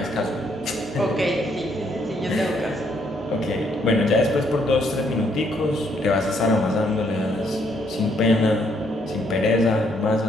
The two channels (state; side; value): normal; both; correlation 0.71